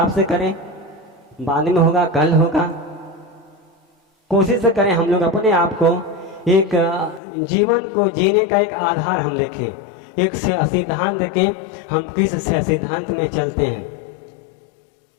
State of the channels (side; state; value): right; drops out; at 7.2 s